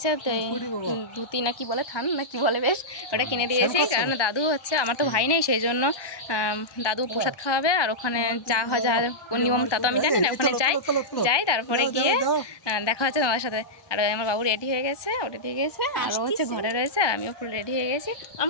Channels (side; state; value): right; late; 1.2 ms